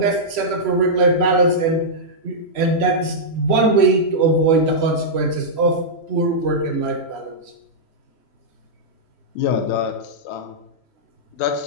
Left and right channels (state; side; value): late; right; 3.1 ms